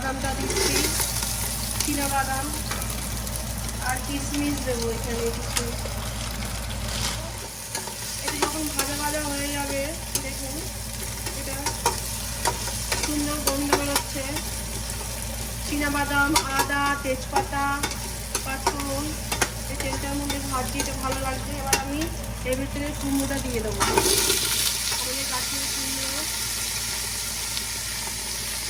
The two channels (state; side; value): identical; both; correlation 1.00